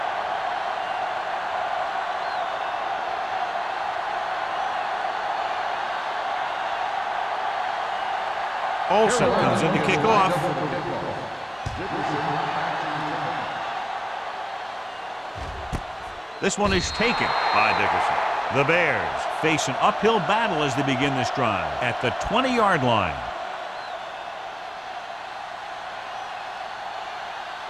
Olsen comes in to kick off. This one is taken by Dickerson. The Bears face an uphill battle as they begin this drive at the 20-yard line.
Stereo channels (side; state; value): both; identical; correlation 1.00